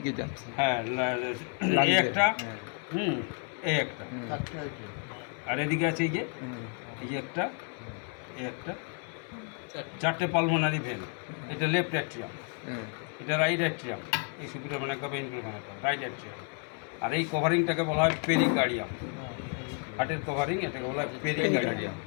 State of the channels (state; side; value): quieter; right; 39.5 dB